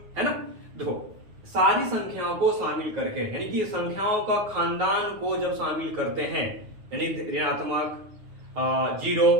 है ना। देखो सारी संख्याओं को शामिल करके, यानी कि संख्याओं का खानदान को जब शामिल करते हैं, यानी ऋणात्मक, जीरो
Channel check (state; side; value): late; left; 9.5 ms